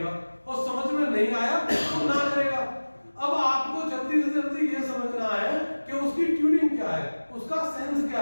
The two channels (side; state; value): both; inverted; correlation -1.00